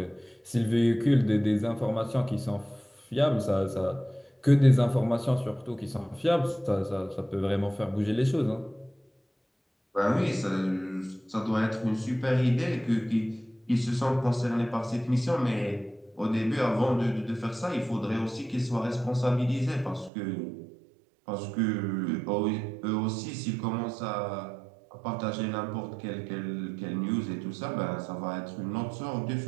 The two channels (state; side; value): drops out; left; at 20.1 s